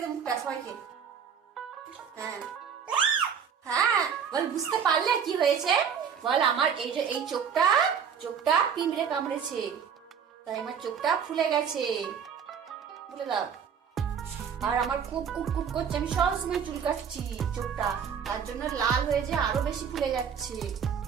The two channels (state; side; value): quieter; left; 7.3 dB